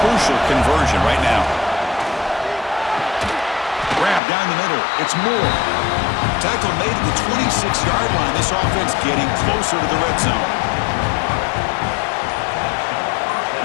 crucial conversion right now. Grab down the middle. It's Moore. Tackle made at the 26-yard line. This offense getting closer to the red zone.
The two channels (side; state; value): right; drops out; at 4.2 s